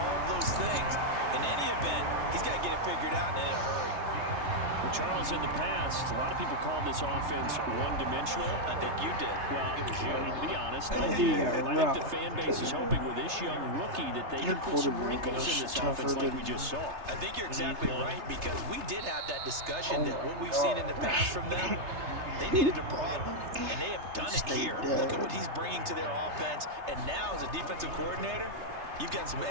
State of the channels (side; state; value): left; late; 3.3 ms